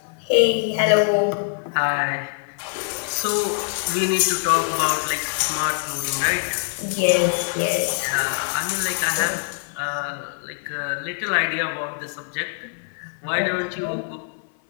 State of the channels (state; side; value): silent; right; 58 dB below the other